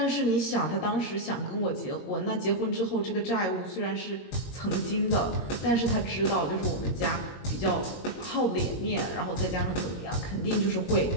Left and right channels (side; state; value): right; late; 22 ms